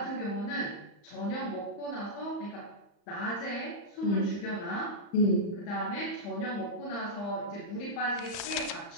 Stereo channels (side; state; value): right; late; 35 ms